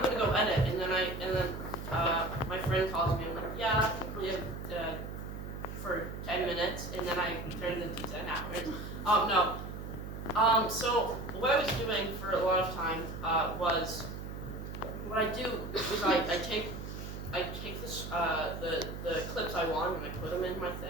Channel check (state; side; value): noise; right; hum, 8 dB below the sound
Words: gonna go edit, and then my friend calls me. I'm like, yeah, we have for 10 minutes, and then I turned it into 10 hours. No. So what I was doing for a lot of time was what I do is I take this the clips I want and I put them in my